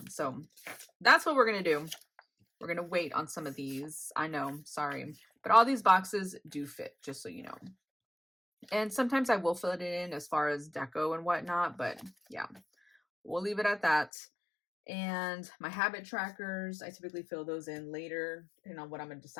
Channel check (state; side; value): drops out; right; at 14.1 s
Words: So that's what we're gonna do. We're gonna wait on some of these. I know, sorry, but all these boxes do fit, just so you know. And sometimes I will fill it in as far as deco and whatnot, but yeah, we'll leave it at that. And my habit trackers, I typically fill those in later, depending on what I'm gonna